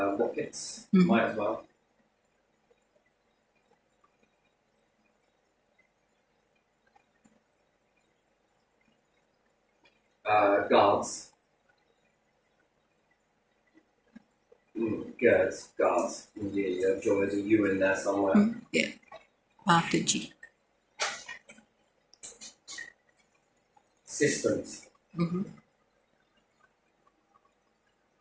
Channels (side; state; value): both; identical; correlation 1.00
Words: Rockets, might as well. Guards. Guards. Yeah, I'm sure there's a U in there somewhere. Yeah. After G. Systems.